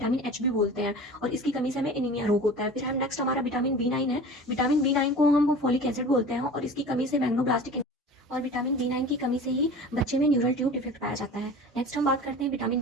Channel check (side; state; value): both; normal; correlation 0.38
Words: एच भी बोलते हैं, और इसकी कमी से हमें एनीमिया रोग होता है। फिर हम नेक्स्ट हमारा विटामिन बी 9 है। विटामिन बी 9 को हम फोलिक एसिड बोलते हैं, और इसकी कमी से मैग्नोब्लास्टिक, और विटामिन बी 9 की कमी से ही बच्चे में न्यूरल ट्यूब डिफेक्ट पाया जाता है। नेक्स्ट हम बात करते हैं विटामिन